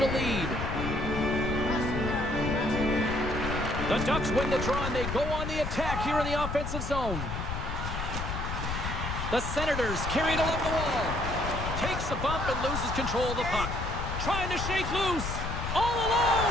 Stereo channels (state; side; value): noise; left; rumble, 4 dB below the sound